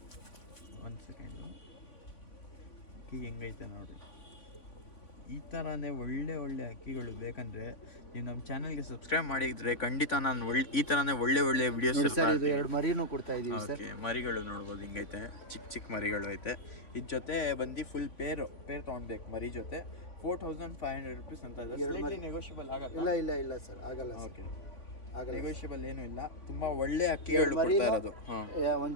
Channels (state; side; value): late; right; 3.5 ms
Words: ಒಂದು ಸೆಕೆಂಡು, ಅಕ್ಕಿ ಹೆಂಗೈತೆ ನೋಡ್ರಿ. ಈ ಥರನೇ ಒಳ್ಳೆ ಅಕ್ಕಿಗಳು ಬೇಕಂದ್ರೆ ನೀವು ನಮ್ಮ ಚಾನಲ್ಗೆ ಸಬ್ಸ್ಕ್ರೈಬ್ ಮಾಡಿದ್ರೆ ಖಂಡಿತ ನಾನು ಈ ಥರನೇ ಒಳ್ಳೆ ವಿಡಿಯೋಸ್. ಸರ್ ಇದು 2 ಮರಿನೂ ಕೊಡ್ತಾ ಇದೀವಿ ಸರ್. ಓಕೆ, ಮರಿಗಳು ನೋಡ್ಬೋದು ಹಿಂಗೈತೆ, ಚಿಕ್ಕ ಮರಿಗಳು ಐತೆ. ಇದ್ರ ಜೊತೆ ಬಂದು ಫುಲ್ ಪೇರ್ ತೊಗೊಳ್ಬೇಕು ಮರಿ ಜೊತೆ. 4,500 ರೂಪೀಸ್ ಅಂತ ಇದೆ. ನೆಗೋಷಿಯಬಲ್ ಆಗಲ್ಲ? ಇಲ್ಲ ಸರ್, ಆಗಲ್ಲ. ಓಕೆ, ನೆಗೋಷಿಯಬಲ್ ಏನೂ ಇಲ್ಲ. ತುಂಬ ಒಳ್ಳೆ ಅಕ್ಕಿಗಳು ಕೊಡ್ತಾ ಇರೋದು.